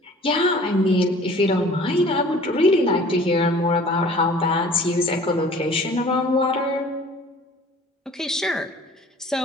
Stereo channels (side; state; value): both; normal; correlation 0.49